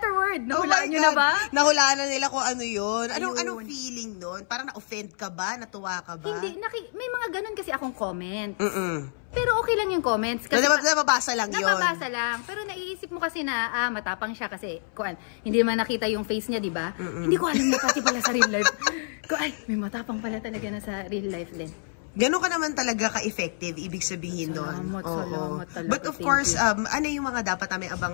word. Nahulaan nyo na ba? Nahulaan na nila kung ano yun. Anong feeling nun? Parang na-offend ka ba? Natuwa ka ba? Hindi. May mga ganun kasi akong comments. Pero okay lang yung comments. Kasi nababasa lang yun. Nababasa lang. Pero naiisip mo kasi na, matapang siya kasi, hindi naman nakita yung face niya, di ba? Hindi ko alam na pati pala sa real life. May matapang pala talaga na sa real life din. Gano'n ka naman talaga ka-effective, ibig sabihin doon. Salamat talaga. But of course, ano yung mga dapat namin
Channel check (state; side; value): silent; right; 60 dB below the other